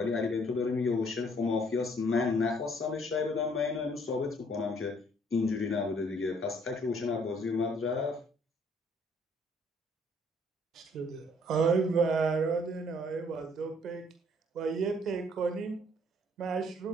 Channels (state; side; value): normal; both; correlation 0.63